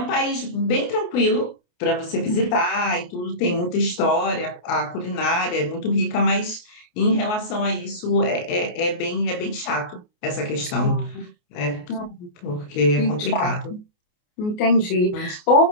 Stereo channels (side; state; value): right; late; 28 ms